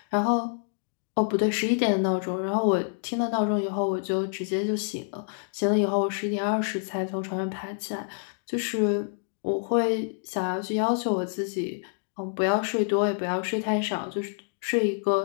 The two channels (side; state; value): right; silent; digital silence